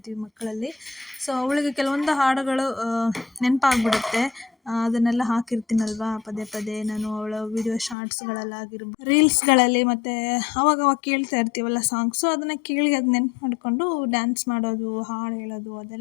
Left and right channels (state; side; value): drops out; right; at 8.0 s